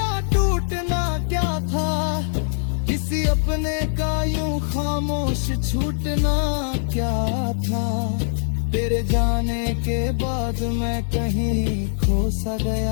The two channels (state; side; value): silent; right; 64 dB below the other